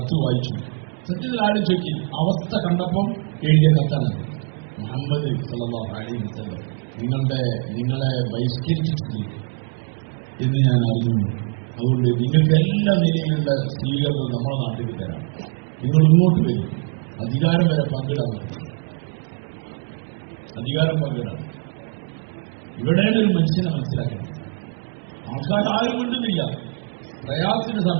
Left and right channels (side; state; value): left; quieter; 37.4 dB